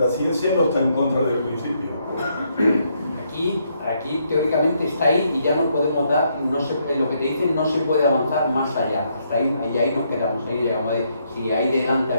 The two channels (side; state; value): both; inverted; correlation -0.74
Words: ciencia no está en contra del principio. Aquí teóricamente está ahí y ya no podemos dar, en lo que te dicen no se puede avanzar más allá, hasta ahí, y ahí nos quedamos, ahí llegamos si ahí delante